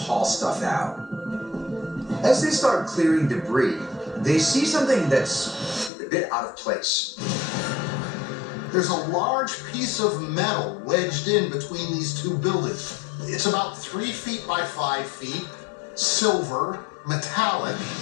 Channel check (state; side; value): drops out; right; at 5.9 s